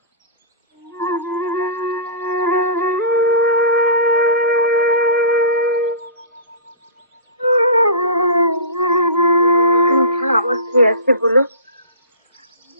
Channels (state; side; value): inverted; both; correlation -0.32